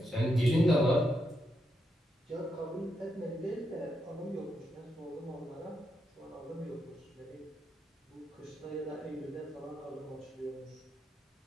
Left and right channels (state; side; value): normal; both; correlation 0.82